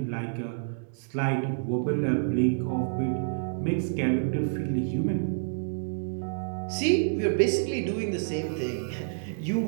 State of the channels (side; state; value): left; silent; digital silence